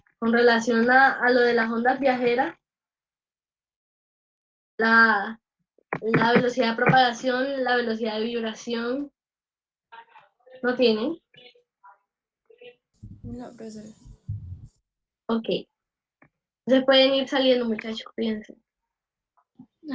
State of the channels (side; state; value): both; identical; correlation 1.00